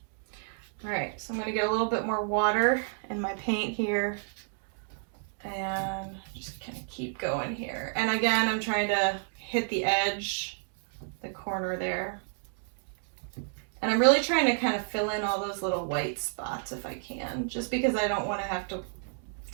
All right, so I'm gonna get a little bit more water in my paint here and just kind of keep going here. And again, I'm trying to hit the edge, the corner there. And I'm really trying to kind of fill in all those little white spots if I can, just because I don't want to have to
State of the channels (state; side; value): silent; left; 57 dB below the other